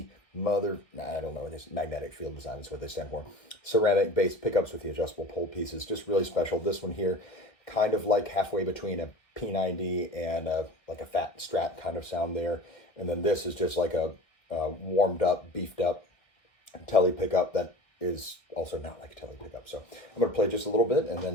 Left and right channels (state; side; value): late; right; 1.5 ms